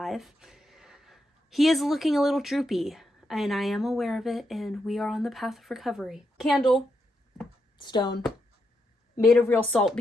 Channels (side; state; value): both; normal; correlation 0.82